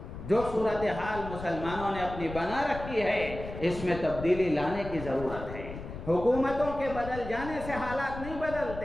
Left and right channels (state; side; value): noise; left; rumble, 10 dB below the sound